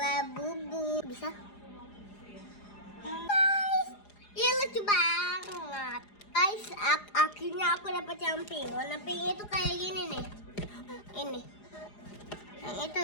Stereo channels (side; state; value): right; late; 4.9 ms